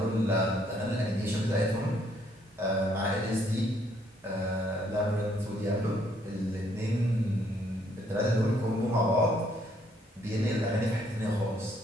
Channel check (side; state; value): both; normal; correlation 0.68